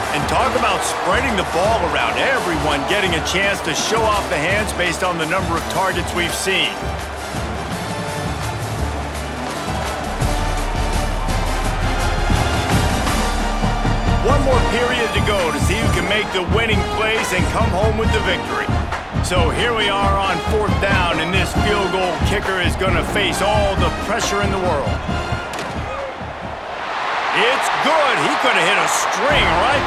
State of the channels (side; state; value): both; identical; correlation 1.00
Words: And talk about spreading the ball around. Everyone getting a chance to show off the hands based on the number of targets we've seen. One more period to go to see who can make the winning plays and come home with the victory. So here we are on 4th down, and this field goal kicker is going to face all the pressure in the world. It's good. He could have hit a string right